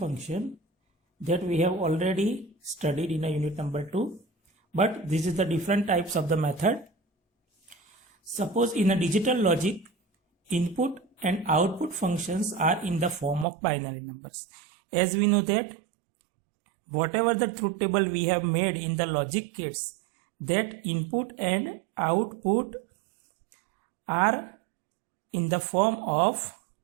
that we have already studied in a unit number 2. But this is the different types of the method. Suppose in a digital logic, input and output functions are in the form of binary numbers. As we know that whatever the truth table we have made in the logic kits, that input and output are in the form of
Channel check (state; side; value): drops out; left; at 13.5 s